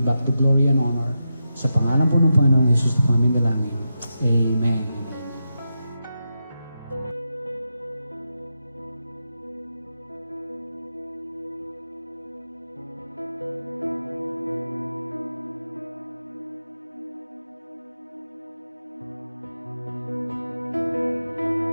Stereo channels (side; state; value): both; inverted; correlation -0.88